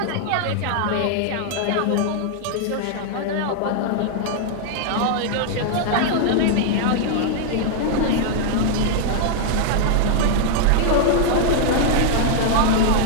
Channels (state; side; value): different; both; correlation 0.00